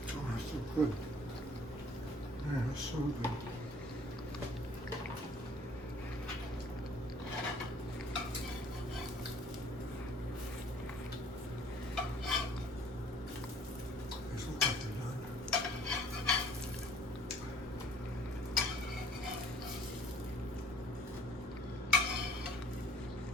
Oh, that's so good. Yeah, that's so good. These look like they're done.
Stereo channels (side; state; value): both; normal; correlation 0.56